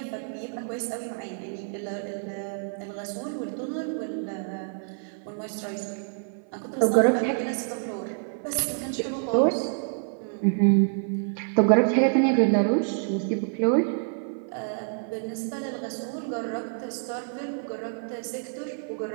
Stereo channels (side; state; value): left; silent; 56 dB below the other